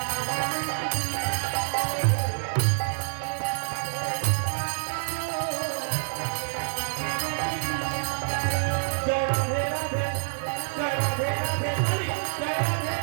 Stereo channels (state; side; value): silent; left; digital silence